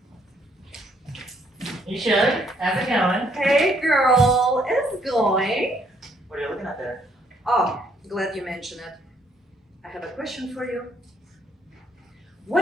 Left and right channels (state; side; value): normal; both; correlation 0.68